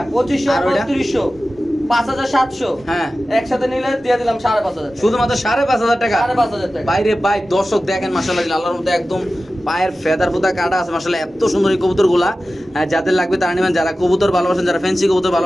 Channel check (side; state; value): both; normal; correlation 0.95